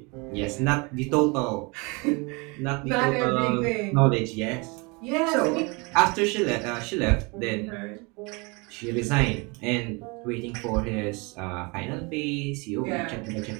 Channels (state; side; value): quieter; left; 28.8 dB